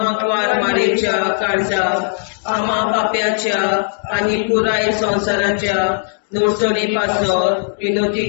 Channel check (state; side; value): silent; right; digital silence